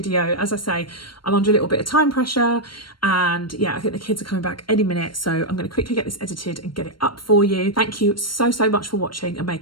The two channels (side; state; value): right; late; 0.72 ms